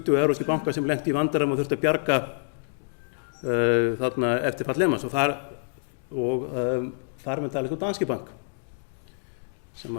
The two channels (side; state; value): right; silent; digital silence